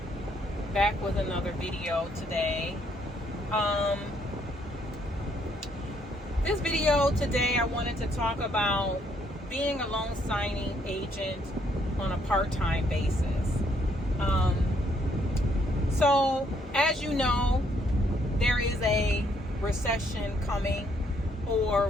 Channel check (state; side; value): normal; both; correlation 0.70